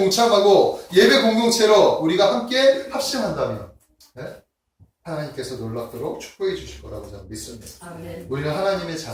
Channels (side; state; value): both; identical; correlation 1.00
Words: 예배 공동체로 우리가 함께 합심한다면 하나님께서 놀랍도록 축복해 주실 거라고 저는 믿습니다. 아멘. 우리는 하나님의